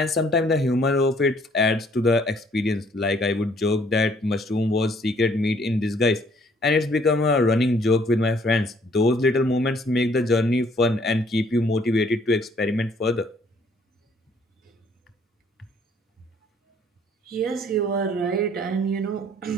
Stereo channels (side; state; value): both; normal; correlation 0.62